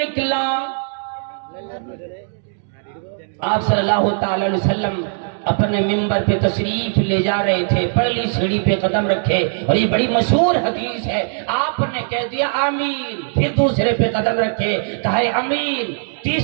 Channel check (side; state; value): left; silent; digital silence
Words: آپ صلی اللہ تعالی علیہ وسلم اپنے منبر پہ تشریف لے جا رہے تھے، پہلی سیڑھی پہ قدم رکھے، اور یہ بڑی مشہور حدیث ہے، آپ نے کہہ دیا آمین، پھر دوسرے پہ قدم رکھے کہے آمین،